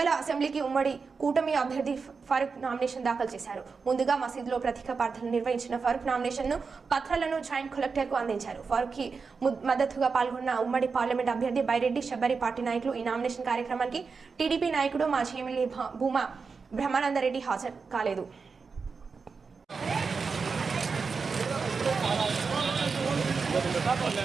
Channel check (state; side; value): quieter; left; 5.0 dB